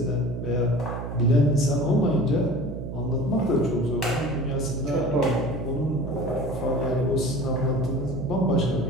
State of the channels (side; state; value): right; noise; hum, 7 dB below the sound